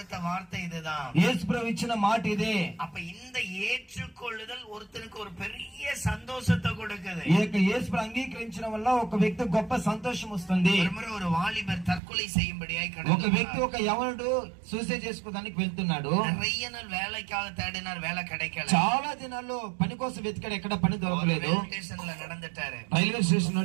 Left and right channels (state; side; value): drops out; left; at 12.0 s